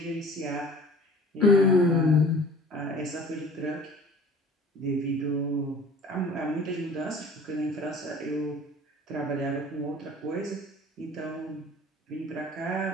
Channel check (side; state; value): both; normal; correlation 0.46